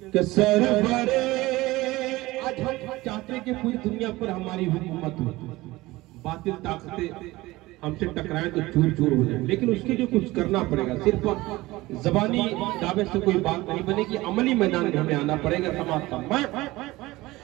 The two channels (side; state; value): left; quieter; 19.4 dB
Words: सरवरे, आज हम चाहते हैं कि पूरी दुनिया पर हमारी हुकूमत हो, बातिल ताकतें हमसे टकराए तो चूर चूर हो जाए, लेकिन उसके लिए कुछ करना पड़ेगा। सिर्फ जबानी दावे से कोई बात नहीं बनेगी, अमली मैदान में हमें आना पड़ेगा समाज का।